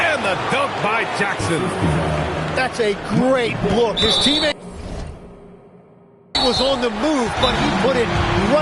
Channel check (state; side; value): identical; both; correlation 1.00